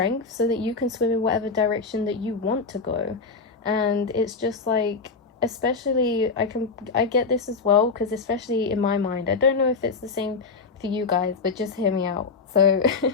so that you can swim in whatever direction that you want to go. And it's just like, especially, I get this as well, because especially in my mind, I don't know if it's the same for you guys, but just hear me out. So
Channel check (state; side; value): quieter; right; 4.5 dB